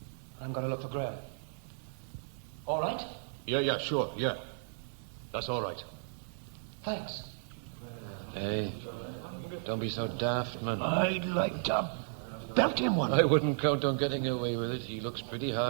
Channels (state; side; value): silent; left; 55 dB below the other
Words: I'm going to look for Graham. All right? Yeah, sure, yeah. That's all right. Thanks. Hey, don't be so daft, man. I'd like to belt him one. I wouldn't count on getting away with it. He looks pretty